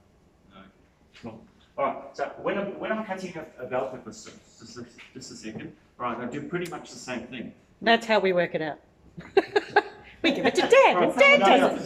No. Cool. Alright, so when I'm cutting a bell pepper, just a second. Right, I do pretty much the same thing. That's how we work it out. We give it to Dad, and Dad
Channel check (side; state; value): both; identical; correlation 1.00